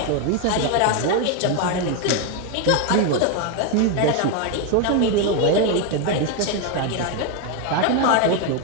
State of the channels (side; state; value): both; different; correlation 0.01